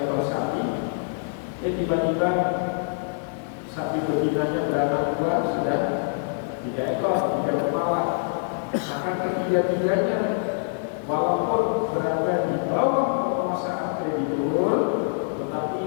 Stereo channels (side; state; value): right; silent; digital silence